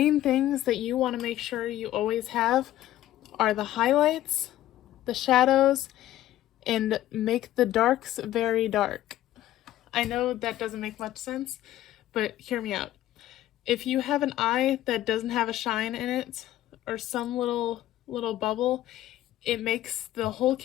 things that you want to make sure you always have are the highlights, the shadows, and make the darks very dark. I know that doesn't make much sense, but hear me out. If you have an eye that doesn't have a shine in it, or some little bubble, it makes the whole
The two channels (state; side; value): quieter; right; 13.8 dB